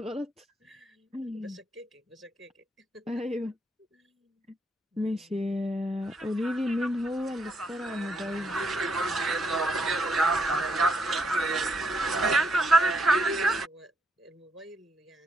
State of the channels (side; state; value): both; normal; correlation 0.76